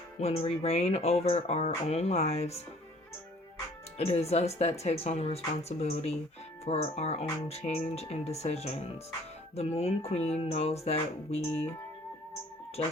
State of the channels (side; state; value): both; normal; correlation 0.55